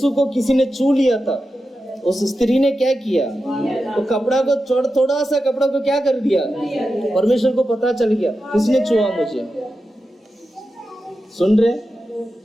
को किसी ने छू लिया था, उस स्त्री ने क्या किया? तो कपड़ा को थोड़ा सा कपड़ा को क्या कर दिया? परमेश्वर को पता चल गया किसने छुआ मुझे। सुन रहे?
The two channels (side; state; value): both; normal; correlation 0.91